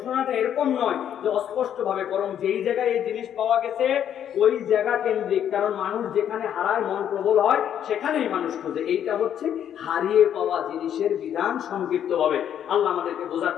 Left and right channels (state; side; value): quieter; right; 9.7 dB